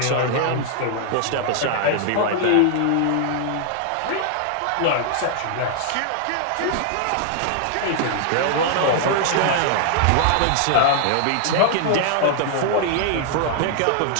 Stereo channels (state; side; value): different; both; correlation 0.00